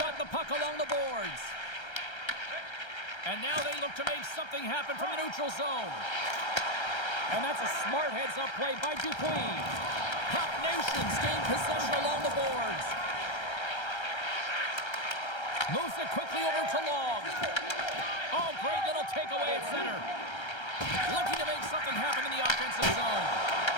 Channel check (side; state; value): right; late; 1.3 ms